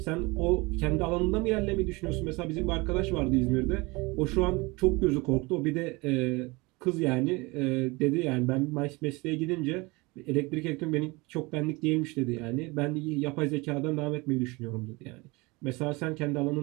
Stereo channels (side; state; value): left; quieter; 24.8 dB